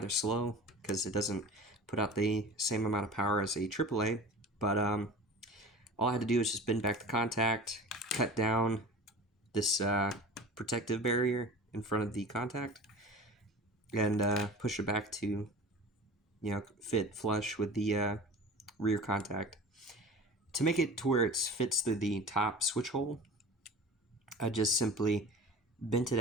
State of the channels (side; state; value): both; normal; correlation 0.37